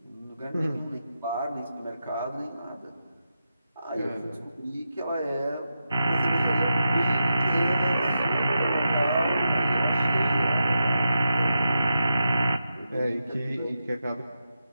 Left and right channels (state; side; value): inverted; both; correlation -0.87